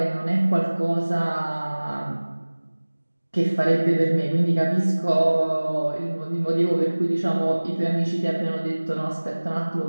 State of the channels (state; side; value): inverted; both; correlation -1.00